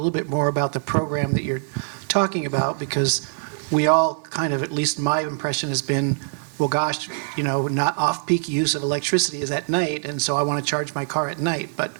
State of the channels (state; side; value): silent; left; digital silence